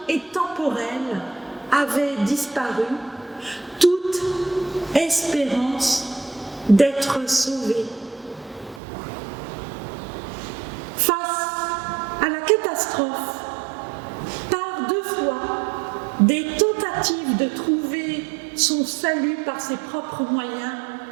et temporels avaient disparu, toute espérance d'être sauvés. Face à la catastrophe, par 2 fois, des tentatives de trouver son salut par ses propres moyens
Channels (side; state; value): left; drops out; at 8.8 s